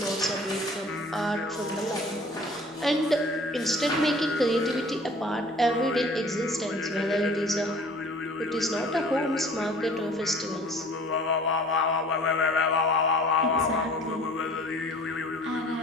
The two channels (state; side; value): normal; both; correlation 0.49